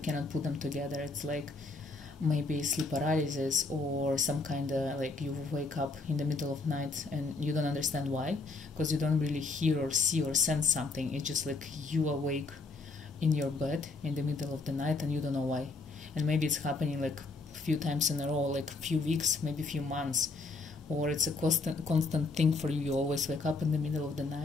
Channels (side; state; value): right; quieter; 3.7 dB